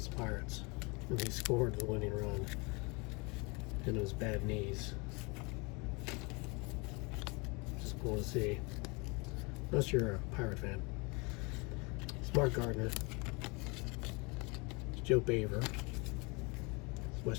the Pirates when he scored the winning run and it was bad knees. Just cool to see. Unless you're a Pirate fan. It's Mark Gardner. It's Joe Baver. It's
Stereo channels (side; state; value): right; quieter; 29.0 dB